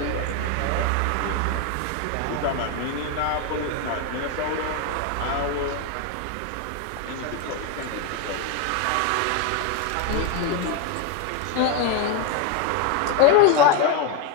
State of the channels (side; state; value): both; different; correlation 0.02